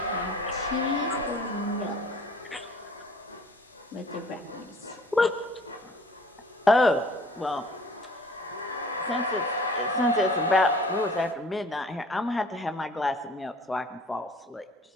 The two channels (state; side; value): normal; both; correlation 0.50